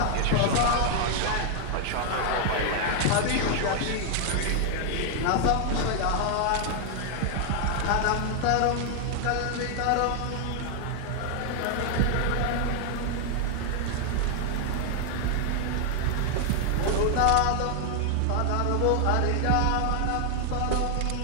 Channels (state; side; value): different; both; correlation 0.00